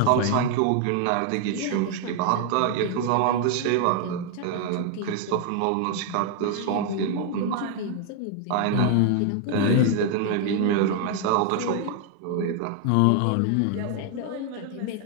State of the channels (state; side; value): different; both; correlation 0.00